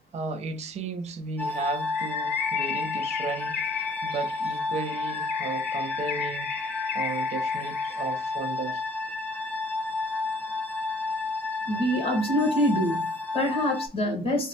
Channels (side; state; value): both; normal; correlation 0.56